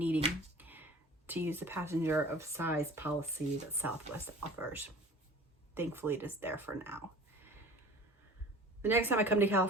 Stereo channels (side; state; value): both; normal; correlation 0.44